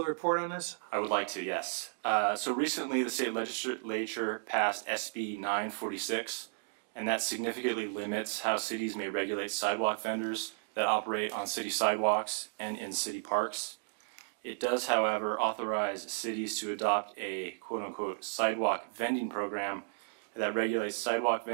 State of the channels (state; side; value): silent; left; digital silence